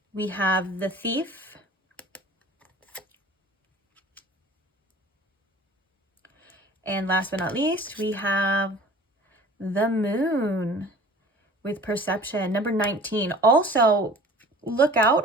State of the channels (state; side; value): normal; both; correlation 0.45